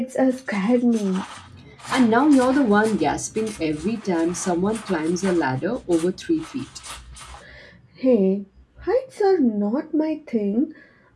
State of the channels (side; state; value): both; identical; correlation 1.00